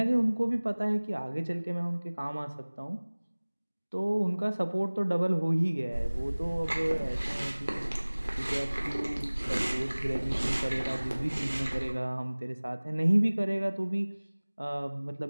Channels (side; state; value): both; inverted; correlation -1.00